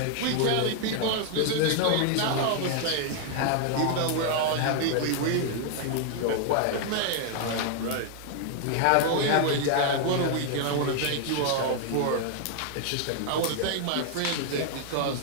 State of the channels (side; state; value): both; different; correlation 0.00